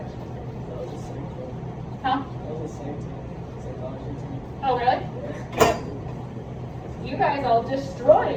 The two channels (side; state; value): both; identical; correlation 1.00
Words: That was the same thing. Huh? That was the same thing. Psychology team. Oh, really? You guys all destroy